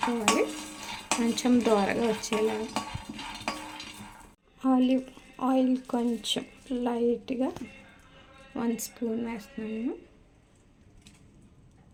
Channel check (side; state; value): both; identical; correlation 1.00